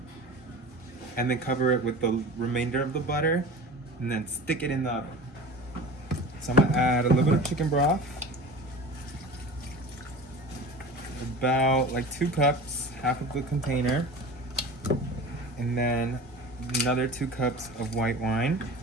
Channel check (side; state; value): both; normal; correlation 0.35